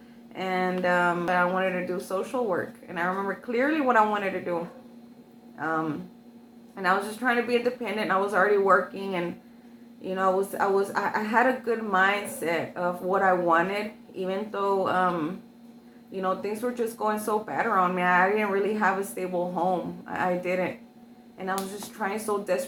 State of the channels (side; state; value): both; identical; correlation 1.00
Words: and I wanted to do social work, and I remember clearly what I wanted to do. And I was just trying to be independent. I was already working, and I had a good mindset of what I wanted, even though things were just going so bad around me. I didn't really have a stable home. I didn't, and I was just trying so